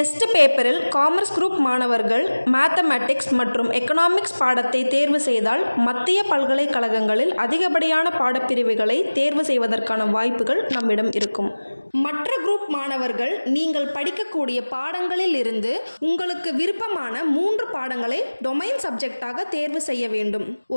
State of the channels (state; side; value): inverted; both; correlation -1.00